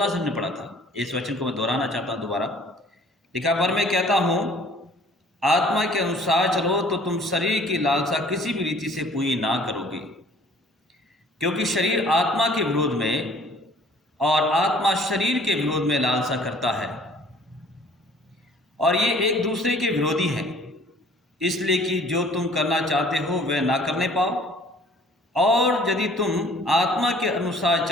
से हमने पढ़ा था। इस वचन को मैं दोहराना चाहता हूँ दोबारा। लिखा, पर मैं कहता हूँ आत्मा के अनुसार चलो तो तुम शरीर की लालसा किसी भी रीति से पूरी ना करोगे, क्योंकि शरीर आत्मा के विरोध में और आत्मा शरीर के विरोध में लालसा करता है और ये एक दूसरे के विरोधी हैं, इसलिए कि जो तुम करना चाहते हो वह ना करने पाओ। और यदि तुम आत्मा के अनुसार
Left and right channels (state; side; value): normal; both; correlation 0.54